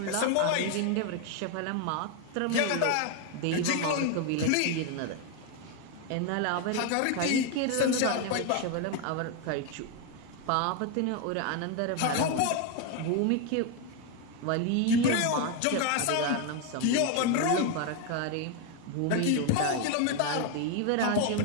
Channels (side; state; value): both; different; correlation 0.01